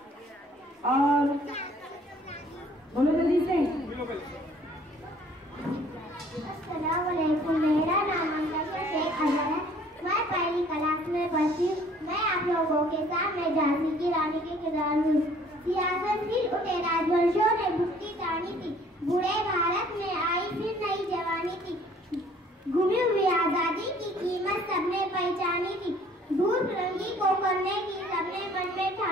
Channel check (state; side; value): normal; both; correlation 0.57